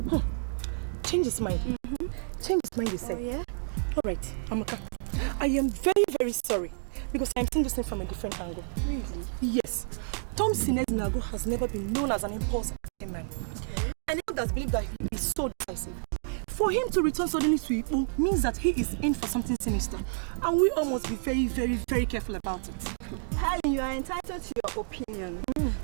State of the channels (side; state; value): left; silent; digital silence